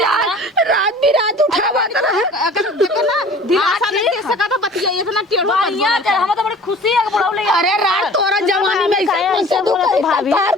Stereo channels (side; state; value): both; normal; correlation 0.46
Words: रात बिरात उठावत रहन। अगर देखो ना दिलासा नहीं दे सका तो बतिया इतना टेढ़ो बढ़िया हम तो बड़ी खुशी है कि बुढ़ाऊ ले अरे रात तोरा जवानी में ऐसे बोलत भाभी प्यार